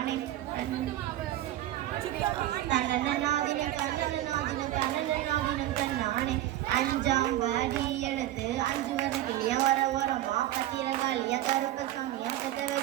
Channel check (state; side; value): quieter; left; 14.0 dB